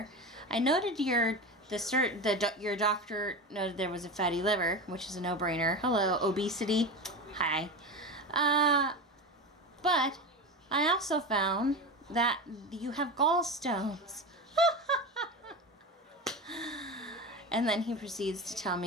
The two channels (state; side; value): normal; both; correlation 0.24